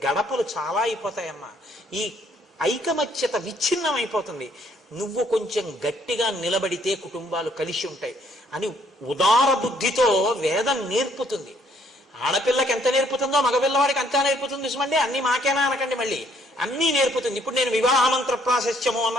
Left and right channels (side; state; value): both; normal; correlation 0.66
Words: గడపలు చాలా అయిపోతాయమ్మా. ఈ ఐకమత్యత విచ్ఛిన్నమైపోతుంది. నువ్వు కొంచెం గట్టిగా నిలబడితే కుటుంబాలు కలిసి ఉంటాయి అని ఉదార బుద్ధితో వేదం నేర్పుతుంది. ఆడపిల్లకి ఎంత నేర్పుతుందో మగపిల్లవాడికి అంతా నేర్పుతుంది సుమండి. అన్ని మాకేనా అనకండి, మళ్ళీ అన్నీ నేర్పుతుంది. ఇప్పుడు నేను వివాహ మంత్ర ప్రాశస్త్యము అన్న